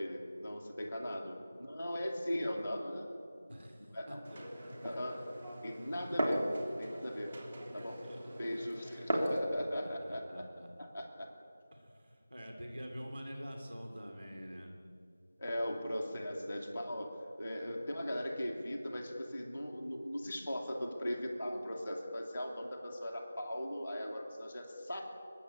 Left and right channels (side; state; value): both; inverted; correlation -0.94